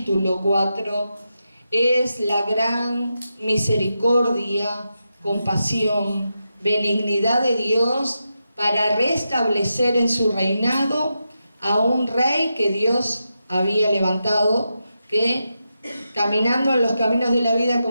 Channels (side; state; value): both; inverted; correlation -0.88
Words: 4 es la gran misericordia, compasión, benignidad de Dios para restablecer en su reinado a un rey que Dios había levantado, que caminando en los caminos de la vida,